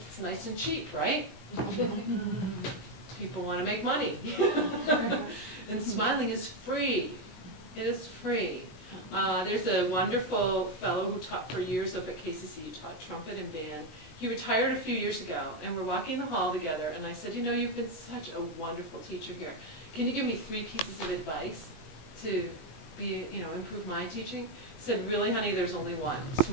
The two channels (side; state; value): right; late; 19 ms